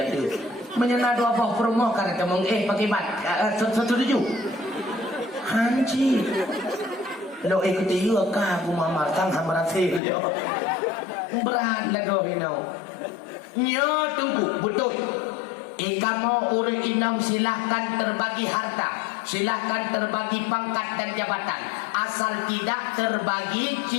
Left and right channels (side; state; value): right; drops out; at 10.0 s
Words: tu menyana dua buah perumah kata mau pakai bat setuju hanji lo ikuti juga kah aku mamar sang hamarasi dia berat lah kau hinau nyo tunggu betul kamu urut inam silahkan terbagi harta silahkan terbagi pangkat dan jabatan asal tidak terbagi